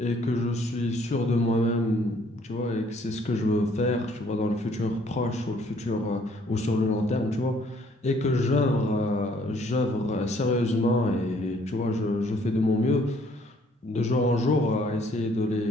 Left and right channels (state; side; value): normal; both; correlation 0.62